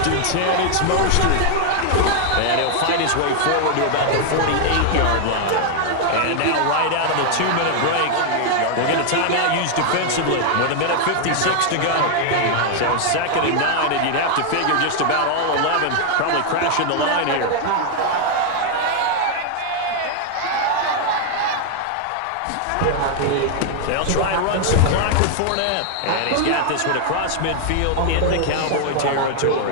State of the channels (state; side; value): different; both; correlation 0.00